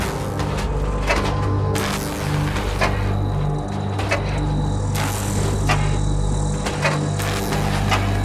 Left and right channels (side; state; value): both; identical; correlation 1.00